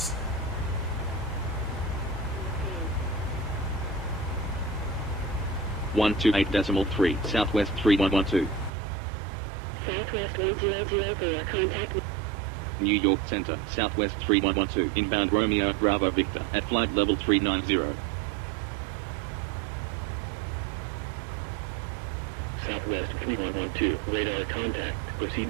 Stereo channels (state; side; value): drops out; left; at 8.7 s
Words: One 28.3, Southwest 3112. Southwest 1004, contact New York Center, Southwest 3112, inbound Romeo, Bravo Victor, at flight level 390. Southwest 3112, radar contact.